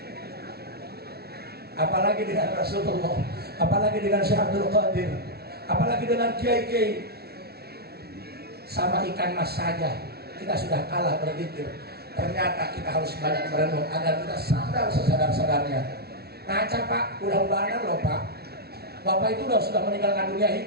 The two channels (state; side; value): late; left; 0.45 ms